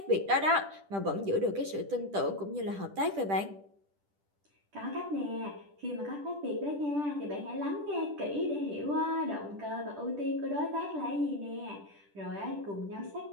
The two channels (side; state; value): left; late; 10 ms